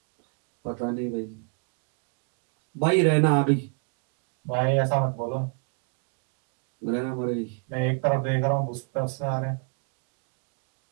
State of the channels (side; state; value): left; quieter; 39.0 dB